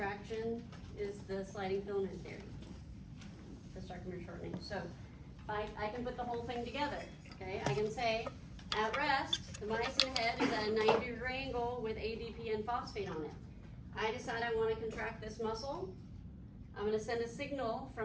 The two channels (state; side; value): identical; both; correlation 1.00